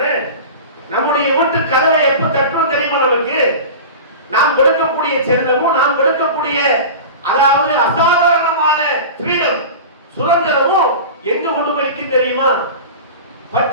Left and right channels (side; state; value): both; inverted; correlation -0.31